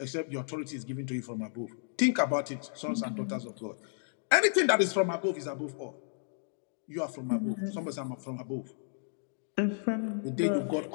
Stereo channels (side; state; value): right; silent; digital silence